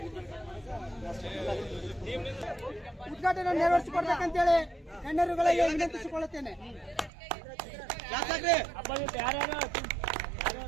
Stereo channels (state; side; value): drops out; left; at 7.1 s